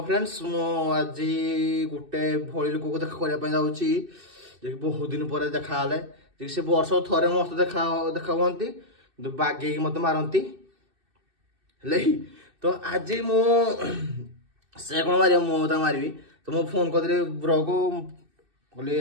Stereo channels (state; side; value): late; left; 2.6 ms